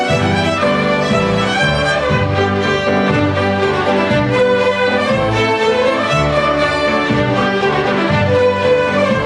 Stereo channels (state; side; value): identical; both; correlation 1.00